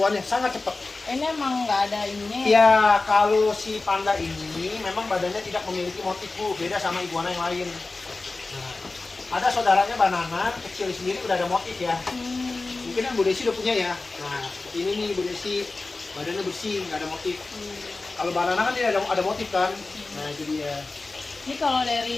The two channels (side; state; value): right; quieter; 3.5 dB